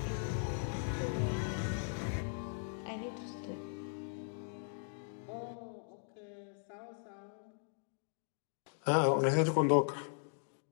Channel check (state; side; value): silent; right; digital silence